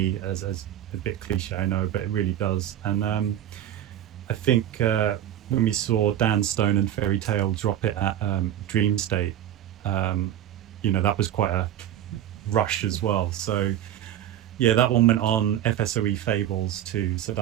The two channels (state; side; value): quieter; left; 11.7 dB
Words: as a bit cliche, I know, but it really does. And I think when we saw Dan Stone and Fairy Tale drop it at Dream State, that was quite a rush as well. So yeah, that one went on FSOE Fables too. So